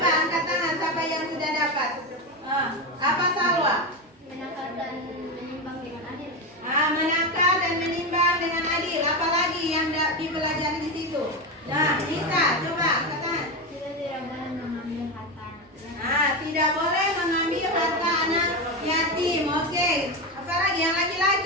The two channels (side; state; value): both; normal; correlation 0.15